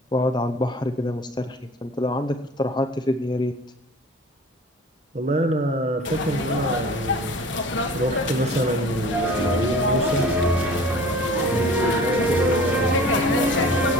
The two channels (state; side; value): normal; both; correlation 0.44